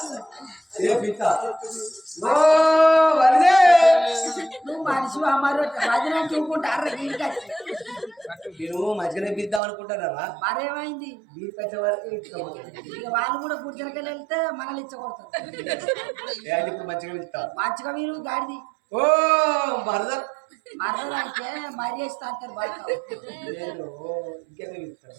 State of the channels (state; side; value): drops out; left; at 9.6 s